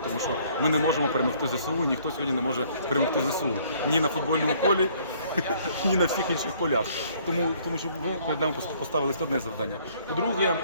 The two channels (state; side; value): inverted; both; correlation -0.61